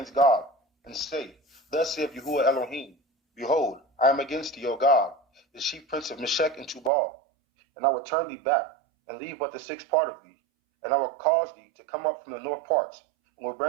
God, and say, Thus saith Yahuwah Elohim, Behold, I am against thee, O God, the chief prince of Meshech and Tubal, and I will turn thee back, and leave but the sixth part of thee, And I will cause thee to come up from the north parts, and will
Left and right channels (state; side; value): drops out; left; at 6.9 s